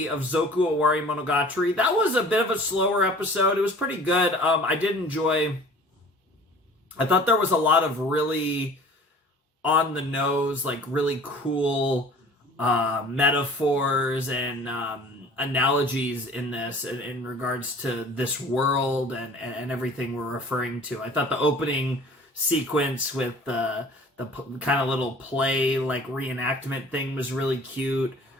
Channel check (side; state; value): both; normal; correlation 0.47